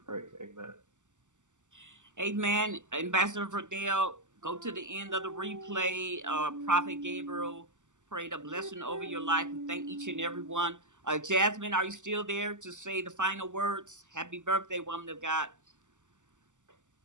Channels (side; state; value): left; late; 0.85 ms